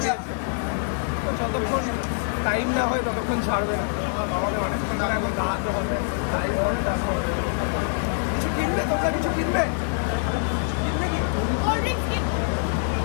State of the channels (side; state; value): right; silent; digital silence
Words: আছে, তো যতক্ষণ টাইম না হয় ততক্ষণ ছাড়বে না। আমাদের অনেকক্ষণ ধরে এখন দাঁড়াতে হবে। কিছু কিনবে? তোমরা কিছু কিনবে?